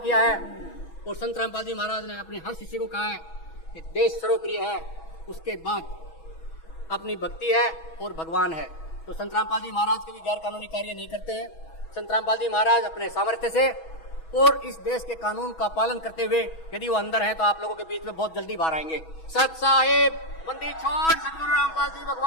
है और संत रामपाल जी महाराज ने अपने हर शिष्य को कहा है कि देश सर्वप्रिय है, उसके बाद अपनी भक्ति है और भगवान है। तो संत रामपाल जी महाराज कभी गैर कानूनी कार्य नहीं करते हैं। संत रामपाल जी महाराज अपने सामर्थ्य से और इस देश के कानून का पालन करते हुए यदि वो अंदर हैं तो आप लोगों के बीच में बहुत जल्दी बाहर आएंगे। सत साहिब बंदी छोड़ सतगुरु रामपाल जी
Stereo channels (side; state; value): right; late; 6.2 ms